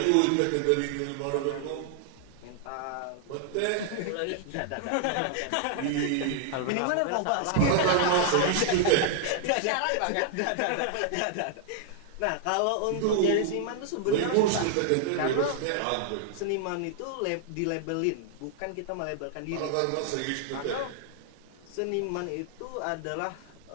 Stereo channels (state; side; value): different; both; correlation 0.00